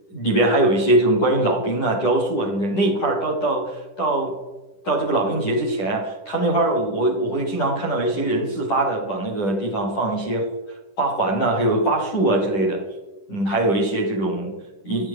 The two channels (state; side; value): late; right; 10 ms